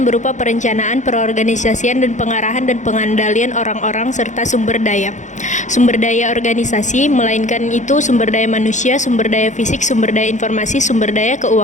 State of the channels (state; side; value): late; right; 0.35 ms